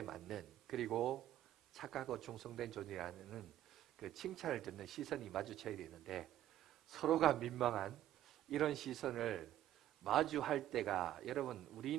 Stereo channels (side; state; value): left; quieter; 12.7 dB